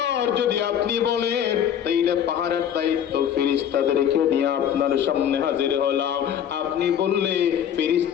যদি আপনি বলেন তাইলে পাহাড়ের দায়িত্ব ফেরেশতাদেরকে নিয়ে আপনার সামনে হাজির হলাম। আপনি বললে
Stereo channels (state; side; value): quieter; right; 9.4 dB